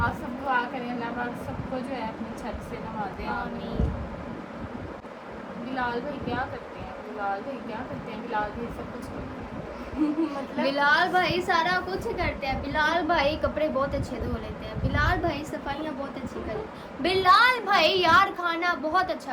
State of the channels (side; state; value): both; identical; correlation 1.00